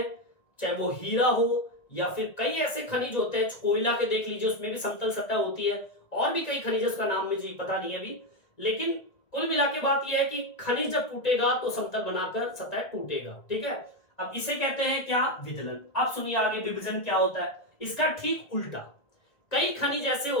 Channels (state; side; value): late; right; 1.7 ms